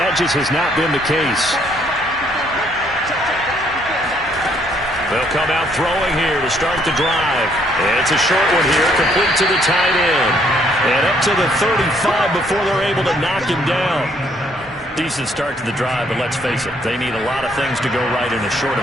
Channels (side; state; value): both; normal; correlation 0.67